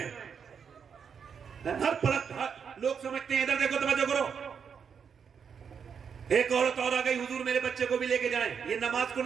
हर पलक लोग समझते हैं, इधर देखो तवज्जो करो, एक औरत और आ गई, हुजूर मेरे बच्चे को भी लेके जाएं। ये नमाज को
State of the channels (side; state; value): left; quieter; 6.8 dB